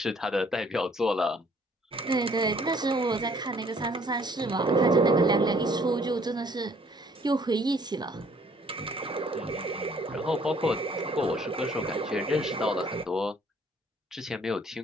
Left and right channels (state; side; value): normal; both; correlation 0.61